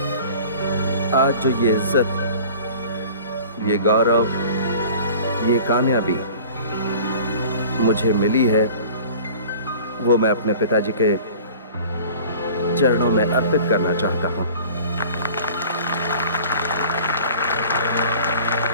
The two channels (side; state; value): both; inverted; correlation -0.44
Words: आज जो ये इज्जत, ये गौरव, ये कामयाबी मुझे मिली है, वो मैं अपने पिताजी के चरणों में अर्पित करना चाहता हूं।